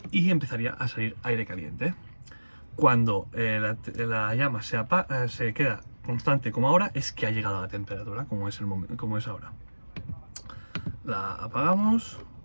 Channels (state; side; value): inverted; both; correlation -1.00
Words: y empezaría a salir aire caliente. Cuando la llama se queda constante como ahora, es que ha llegado a la temperatura, como es ahora. La apagamos,